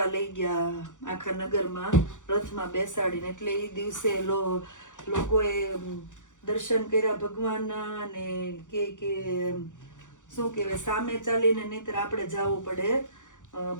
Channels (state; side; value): late; right; 0.86 ms